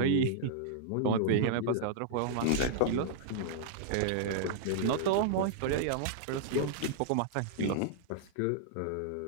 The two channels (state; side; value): different; both; correlation -0.01